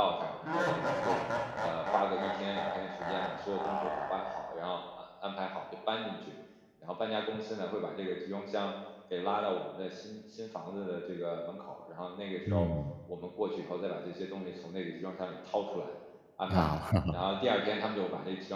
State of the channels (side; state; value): both; identical; correlation 1.00